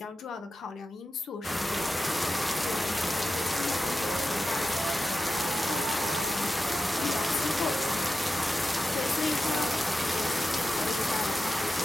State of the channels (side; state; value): both; normal; correlation 0.91